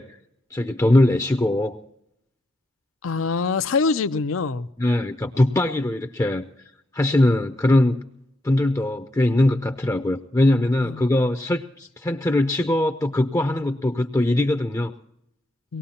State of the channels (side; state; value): both; normal; correlation 0.82